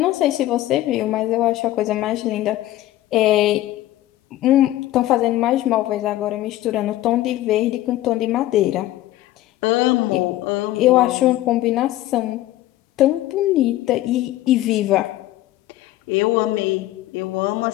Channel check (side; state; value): right; quieter; 15.1 dB